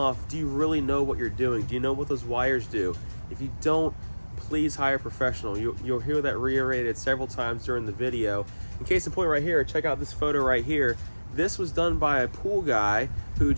do you really know what you're doing? Do you know what those wires do? If you don't, please hire a professional. You'll hear that reiterated several times during the video. In case in point right here, check out this photo right here. This was done by a pool guy who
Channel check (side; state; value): both; inverted; correlation -1.00